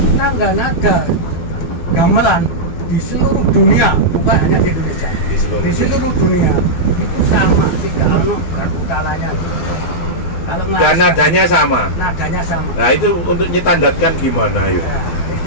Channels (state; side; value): late; right; 12 ms